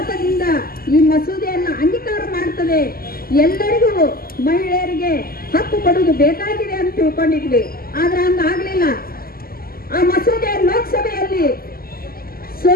ಈ ಮಸೂದೆಯನ್ನು ಅಂಗೀಕಾರ ಮಾಡ್ತದೆ. ಎಲ್ಲರಿಗೂ ಮಹಿಳೆಯರಿಗೆ ಹಕ್ಕು ಕೊಡುವುದು ಬೇಕಾಗಿದೆ ಅಂತ ತಿಳ್ಕೊಂಡಿದ್ವಿ. ಆದ್ರೆ ಹಂಗಾಗ್ಲಿಲ್ಲ. ಆ ಮಸೂದೆ ಲೋಕಸಭೆಯಲ್ಲಿ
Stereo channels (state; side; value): late; right; 0.43 ms